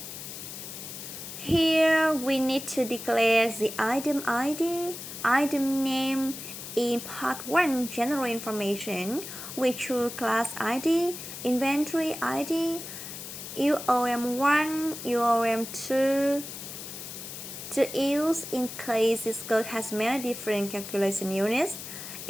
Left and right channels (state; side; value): noise; left; hiss, 10 dB below the sound